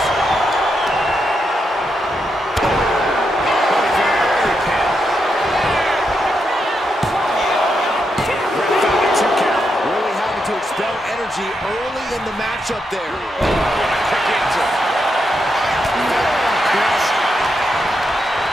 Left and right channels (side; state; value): both; normal; correlation 0.83